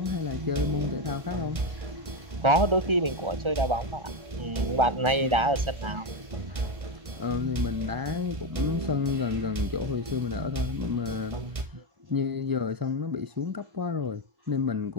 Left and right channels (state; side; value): late; left; 1.5 ms